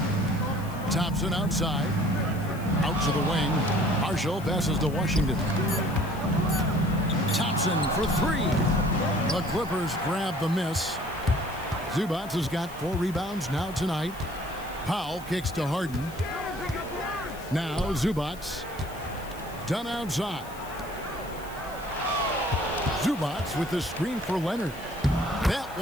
Thompson outside. Out to the wing. Marshall passes to Washington. Thompson for three. The Clippers grab the miss. Zubac has got 4 rebounds now tonight. Powell kicks to Harden. Now Zubac. Done outside. Zubac with the screen for Leonard. That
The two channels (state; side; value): noise; left; hiss, 19 dB below the sound